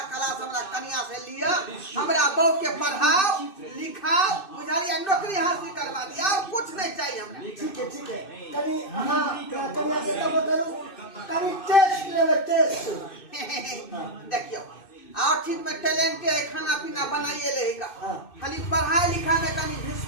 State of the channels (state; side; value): late; right; 2.6 ms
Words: क्लास हमरा कन्या से लिया हमरा बहू के पढ़ाओ लिखाओ बुझालिए नौकरी हासिल करवा दिया और कुछ नहीं चाहिए हमरा ठीक है कनी अहाँ कन्या से तब करू कनी टेस्ट लेवे टेस्ट देखियो और चीज में टैलेंट है खाना पीना बनाइए लेगा खाली पढ़ाई लिखाई में कहीं